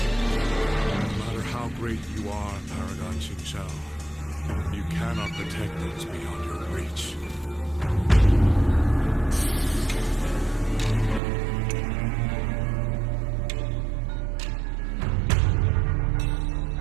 No matter how great you are, Paragon Qingxiao, you cannot protect those beyond your reach.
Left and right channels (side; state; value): left; drops out; at 11.2 s